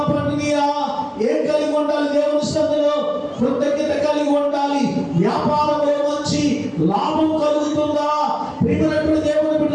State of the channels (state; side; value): identical; both; correlation 1.00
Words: పండినయా? ఏం కలిగి ఉండాలి? దేవుని సన్నిధిలో కృతజ్ఞత కలిగి ఉండాలి. వ్యాపారంలో మంచి లాభం కలుగుతుందా? ప్రియమైనటువంటి దేవుని